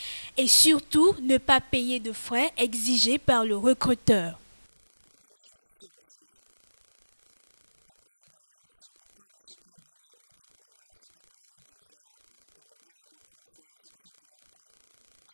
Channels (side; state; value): both; inverted; correlation -1.00